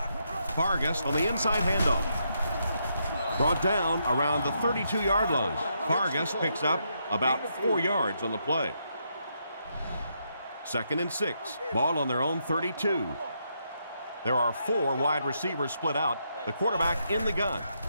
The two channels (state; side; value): inverted; both; correlation -0.79